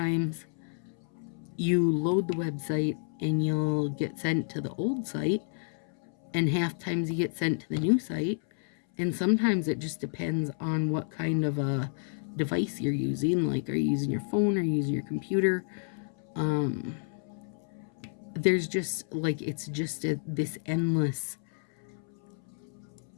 you load the website and you'll get sent to the old site, and half times you get sent to the new site. And sometimes it just depends on what kind of a device you're using. Like, are you using your phone or using your computer? There's just, like, it's just this endless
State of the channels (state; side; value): silent; right; 58 dB below the other